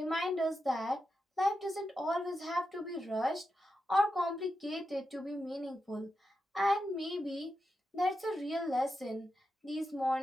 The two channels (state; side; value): normal; both; correlation 0.88